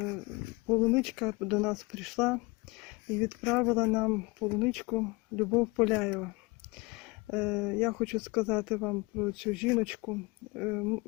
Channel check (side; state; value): right; quieter; 25.4 dB